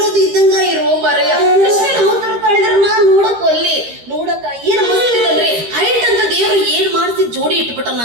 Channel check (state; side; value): late; left; 13 ms